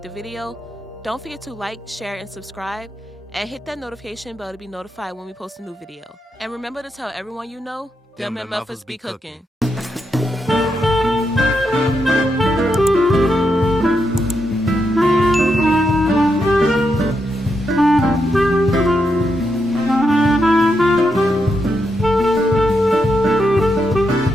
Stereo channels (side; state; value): both; normal; correlation 0.83